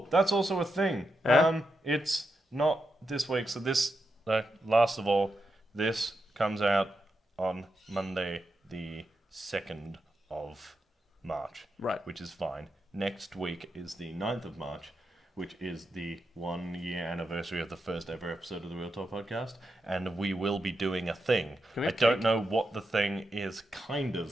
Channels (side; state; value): both; normal; correlation 0.86